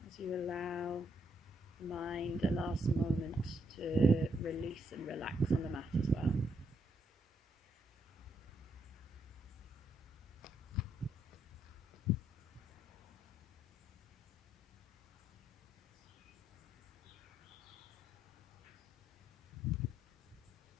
as you allow the mind a last moment to release and relax on the mat as well.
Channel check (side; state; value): both; normal; correlation 0.76